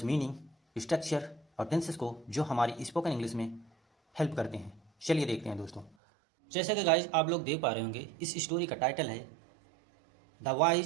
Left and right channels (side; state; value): left; drops out; at 5.9 s